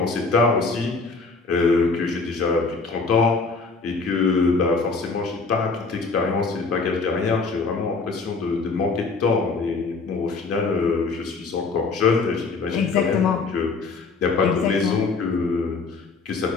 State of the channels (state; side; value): quieter; right; 4.2 dB